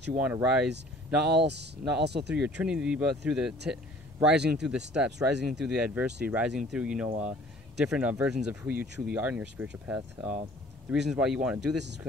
you want to rise, not also through your Trinity, but through rising through the steps, rising through the adversity, rising through different versions of who you truly are in your spiritual path. The reasons why you want to do this is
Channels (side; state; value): both; normal; correlation 0.52